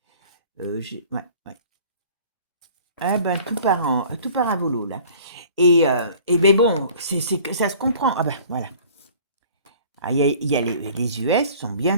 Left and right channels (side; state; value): both; inverted; correlation -0.49